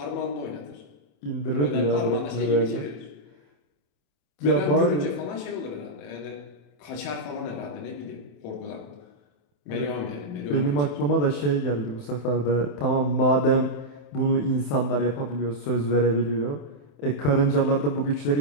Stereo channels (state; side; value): late; right; 27 ms